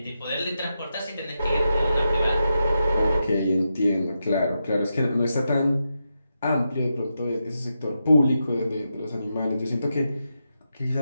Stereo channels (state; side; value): inverted; both; correlation -0.87